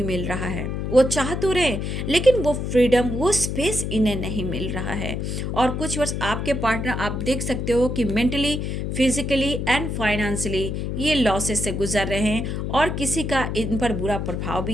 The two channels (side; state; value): left; noise; hum, 3 dB below the sound